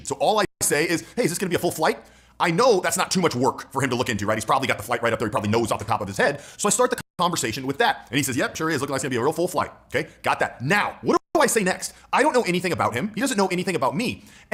So all I say is, hey, is this going to be a full flight? I know that's not too much work for him to look into, right? He's probably got the flight right up there. He probably knows off the top of his head. So I start the conversation with that. And he says, yep, sure is. Looking like it's going to be a real full flight. Okay, got that. Now, what do I say next? I don't know anything about him. He doesn't know anything about me.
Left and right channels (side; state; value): both; identical; correlation 1.00